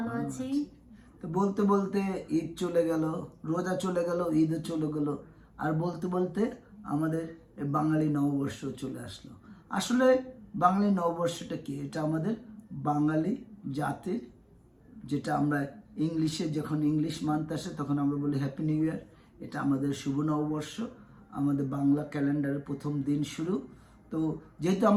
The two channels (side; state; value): both; identical; correlation 1.00